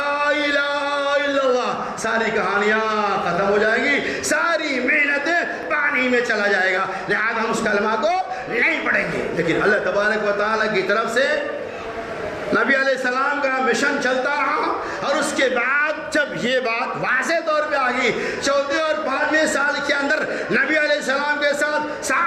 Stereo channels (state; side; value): identical; both; correlation 1.00